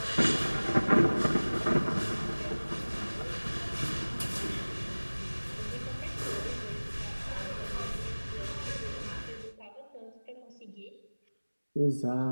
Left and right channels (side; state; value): both; inverted; correlation -1.00